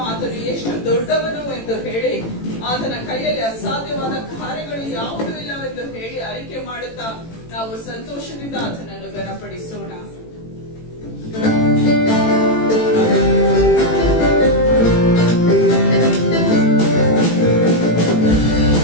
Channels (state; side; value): late; right; 18 ms